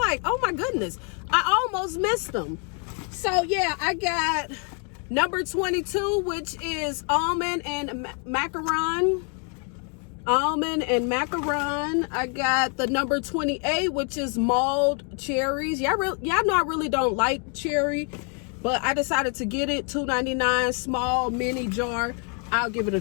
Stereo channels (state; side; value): quieter; right; 39.5 dB